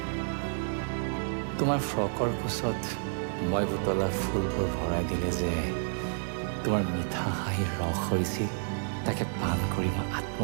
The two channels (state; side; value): silent; left; digital silence